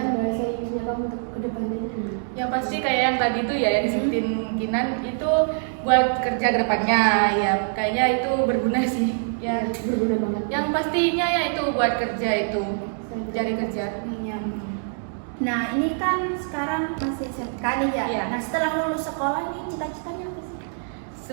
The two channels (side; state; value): left; silent; digital silence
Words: bahasa Inggrisnya kamu untuk kedepannya? Yang pasti kayak yang tadi tuh ya yang disebutin Kinan itu buat kerja ke depannya ya, kayaknya itu berguna sih ya. Berguna banget. Yang pastinya ya itu buat kerja itu, cari kerja. Iya. Nah, ini kan sekarang masih SMK nih ya. Iya. Nah, setelah lulus sekolah nih cita-citanya apa sih?